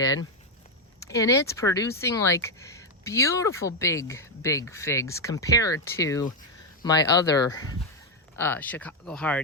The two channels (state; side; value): normal; both; correlation 0.03